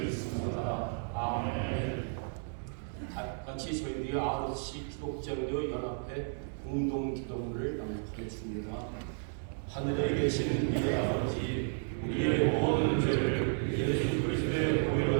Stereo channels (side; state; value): left; silent; digital silence